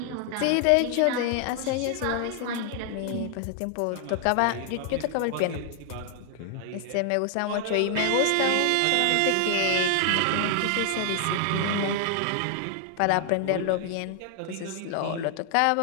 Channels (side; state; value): both; different; correlation 0.00